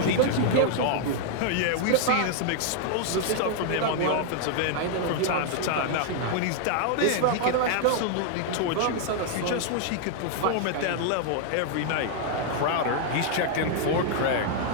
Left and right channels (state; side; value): different; both; correlation 0.00